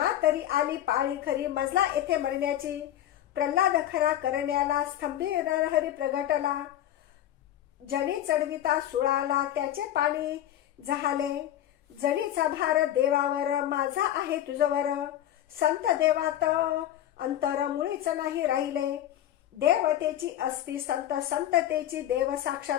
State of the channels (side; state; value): right; quieter; 12.0 dB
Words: तरी आली पाळी खरी मजला येथे मरण्याची. प्रल्हाद खरा करण्याला स्तंभी नरहरी प्रगटला. जणी चढविता सुळाला त्याचे पाणी जहाले. जणीचा भार देवावर माझा आहे तुझवर. संत देवात अंतर मुळीच नाही राहिले. देवतेची असती संत संततेची देव